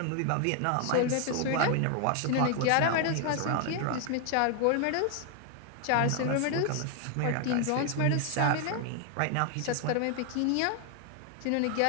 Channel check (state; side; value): different; both; correlation 0.00